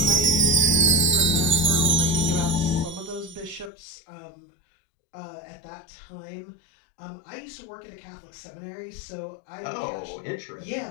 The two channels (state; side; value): drops out; right; at 3.7 s